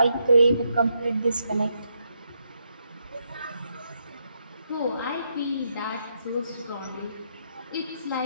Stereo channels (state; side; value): inverted; both; correlation -0.79